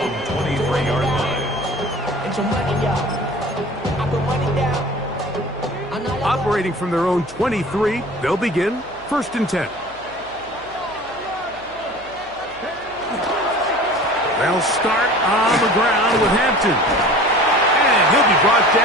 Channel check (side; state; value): right; noise; hum, 24 dB below the sound